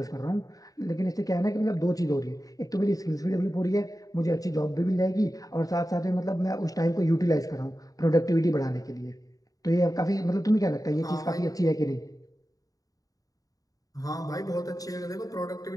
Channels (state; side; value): late; right; 0.17 ms